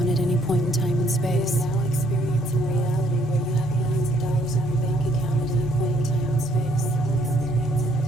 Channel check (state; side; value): normal; both; correlation 0.66